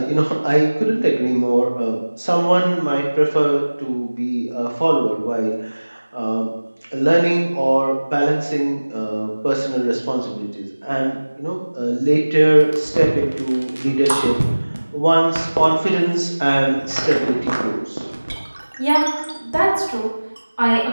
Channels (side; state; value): both; inverted; correlation -1.00